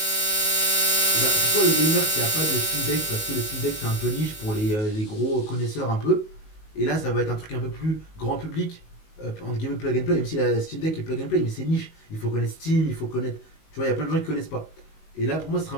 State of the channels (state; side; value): late; right; 19 ms